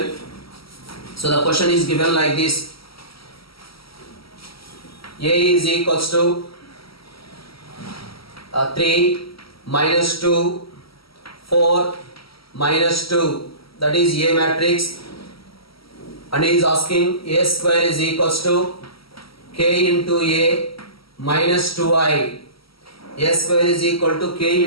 So the question is given like this. A is equals to 3 minus 2, 4 minus 2. That is A matrix. and he is asking a square is equals to k into a minus 2i. A square is equal to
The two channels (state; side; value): late; right; 0.75 ms